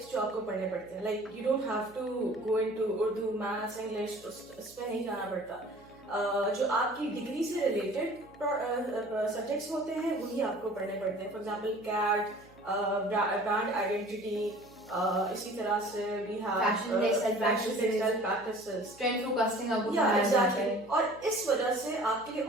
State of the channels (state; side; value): noise; right; hum, 25 dB below the sound